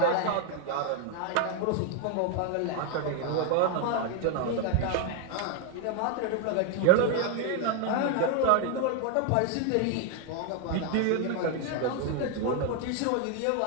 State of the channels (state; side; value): different; both; correlation 0.01